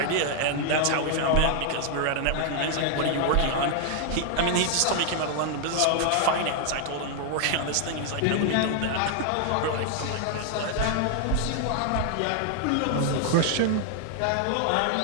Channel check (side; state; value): both; different; correlation 0.00